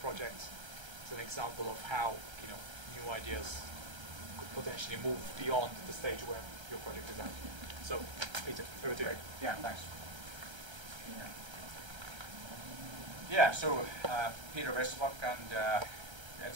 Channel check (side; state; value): left; late; 1.3 ms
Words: It's an example of how new ideas could potentially move beyond the stage where your project is at. So, Peter, over to you. Yeah, thanks. Yeah, so Peter Vesterbacka, and